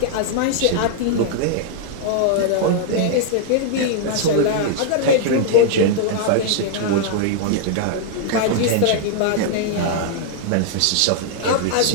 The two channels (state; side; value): different; both; correlation -0.01